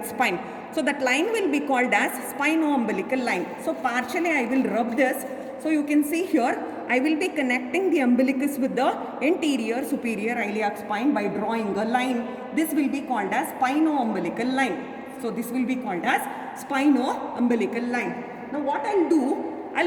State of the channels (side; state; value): both; identical; correlation 1.00